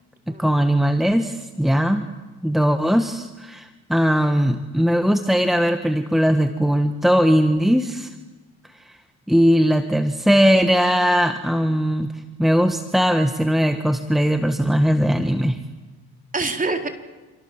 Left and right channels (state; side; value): normal; both; correlation 0.95